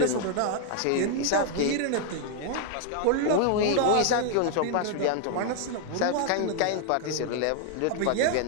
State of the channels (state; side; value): different; both; correlation 0.00